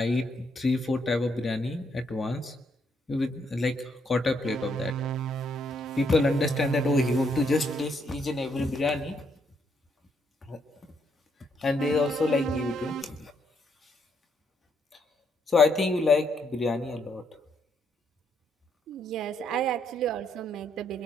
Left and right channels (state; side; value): normal; both; correlation 0.74